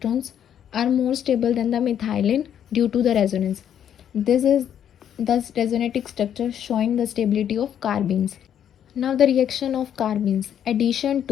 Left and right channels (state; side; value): quieter; right; 9.5 dB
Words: are more stable than the methylene due to the resonance. This is thus resonating structure showing the stability of carbenes. Now the reaction of carbenes. Addition